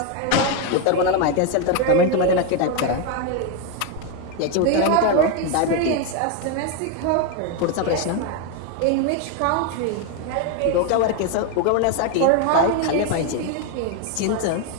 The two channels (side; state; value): both; different; correlation 0.01